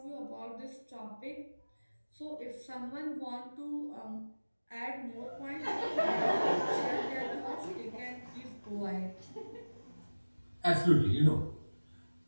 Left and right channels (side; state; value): both; inverted; correlation -1.00